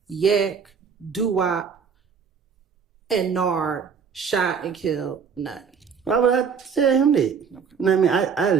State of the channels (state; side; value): quieter; left; 6.4 dB